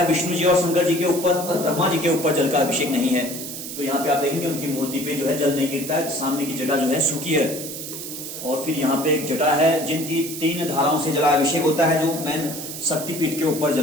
विष्णु जी और शंकर जी के ऊपर, और ब्रह्मा जी के ऊपर जल का अभिषेक नहीं है। तो यहाँ पे आप देखेंगे उनकी मूर्ति पे जो है जल नहीं गिरता है, सामने की जटा जो है सूखी है। और फिर यहाँ पे एक जटा है जिनकी 3 धाराओं से जलाभिषेक होता है, जो मैन शक्तिपीठ के ऊपर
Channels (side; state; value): right; noise; hiss, 8 dB below the sound